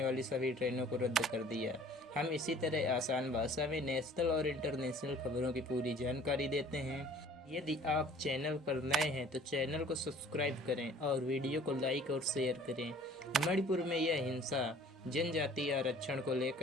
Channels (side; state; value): both; normal; correlation 0.51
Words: वाली सभी ट्रेनों को रद्द कर दिया। हम इसी तरह आसान भाषा में नेशनल और इंटरनेशनल खबरों की पूरी जानकारी देते हैं। यदि आप चैनल पर नए हैं तो चैनल को सब्सक्राइब करें और वीडियो को लाइक और शेयर करें। मणिपुर में यह हिंसा जनजातीय आरक्षण को